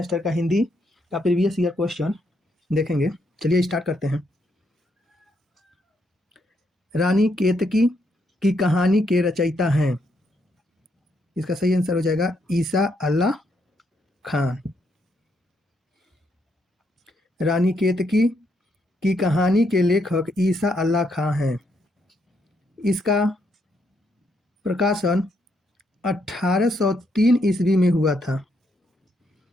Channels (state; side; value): normal; both; correlation 0.76